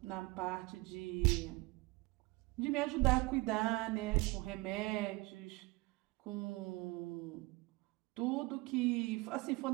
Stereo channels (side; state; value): left; quieter; 23.2 dB